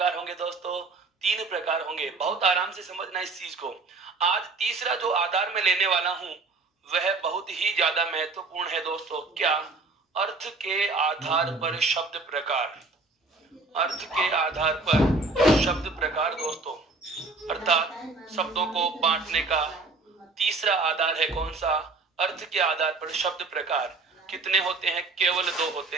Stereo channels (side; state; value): left; quieter; 3.7 dB